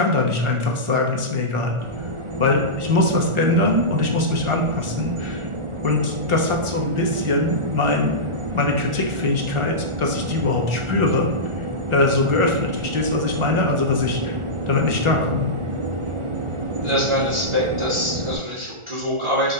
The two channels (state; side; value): late; left; 1.4 ms